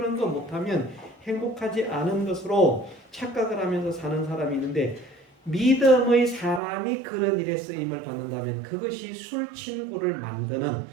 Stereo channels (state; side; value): drops out; left; at 6.6 s